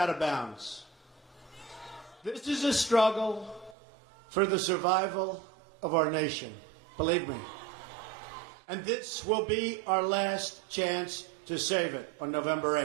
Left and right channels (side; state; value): left; drops out; at 3.8 s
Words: of bounds. This is a struggle for the survival of our nation, believe me. And this will be our last chance to save it on November